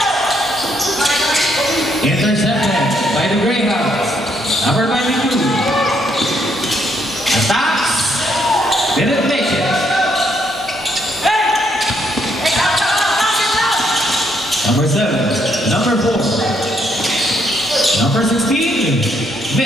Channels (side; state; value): both; normal; correlation 0.73